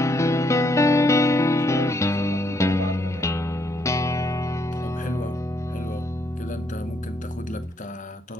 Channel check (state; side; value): normal; both; correlation 0.73